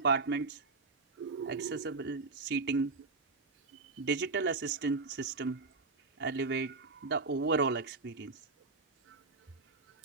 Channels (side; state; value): left; quieter; 3.9 dB